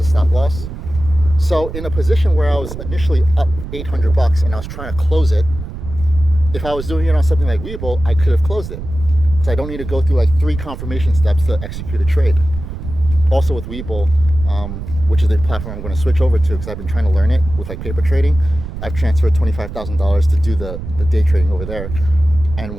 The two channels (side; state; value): right; noise; rumble, 9 dB below the sound